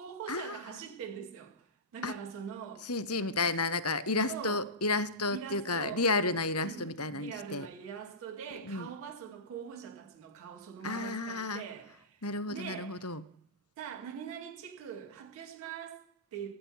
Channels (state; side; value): normal; both; correlation -0.20